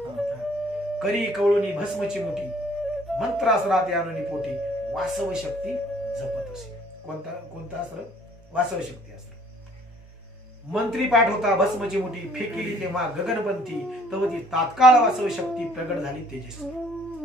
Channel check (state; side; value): normal; both; correlation 0.58